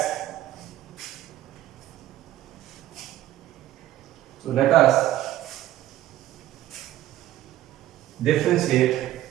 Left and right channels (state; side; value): quieter; left; 13.8 dB